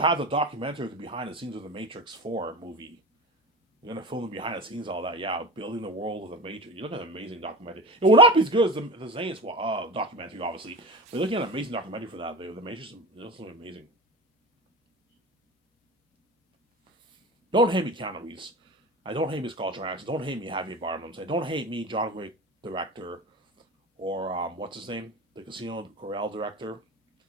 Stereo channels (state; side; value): normal; both; correlation 0.30